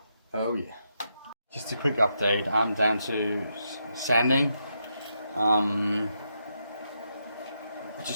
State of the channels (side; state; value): both; inverted; correlation -0.82